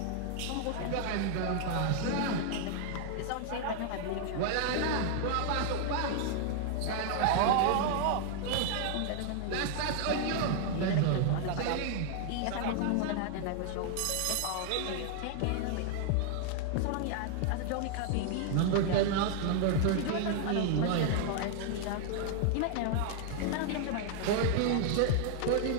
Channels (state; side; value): different; both; correlation 0.00